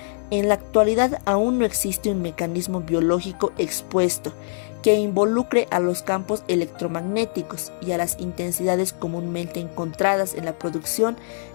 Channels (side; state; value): right; silent; digital silence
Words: en la actualidad aún no existe un mecanismo biológico expuesto que involucre a los campos electromagnéticos y a las intensidades comúnmente encontradas en la producción